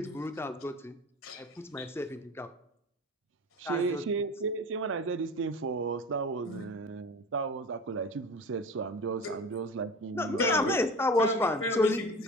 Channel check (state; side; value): normal; both; correlation 0.35